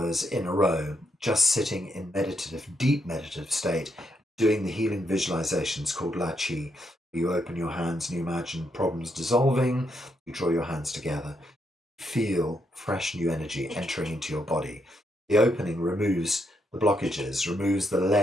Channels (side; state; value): both; normal; correlation 0.79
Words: in a row, just sitting in deep meditative state, doing the healing visualizations called Lachi. You open your hands and you imagine problems dissolving. You draw your hands together. Feel fresh new energy entering into your body. The opening removes the blockages, removes the